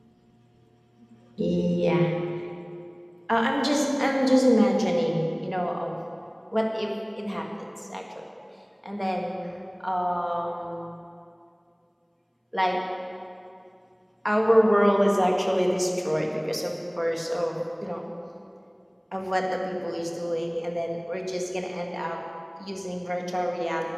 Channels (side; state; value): both; identical; correlation 1.00